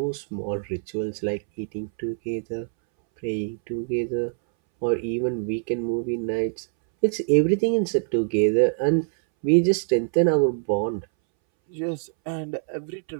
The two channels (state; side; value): silent; left; 62 dB below the other